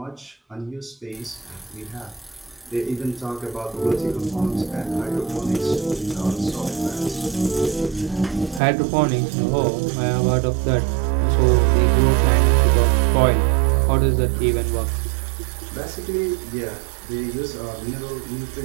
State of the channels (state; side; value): drops out; left; at 8.6 s